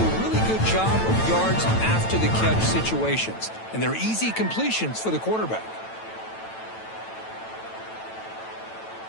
really good job of yards after the catch situations. And they're easy completions for the quarterback.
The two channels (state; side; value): late; right; 9.1 ms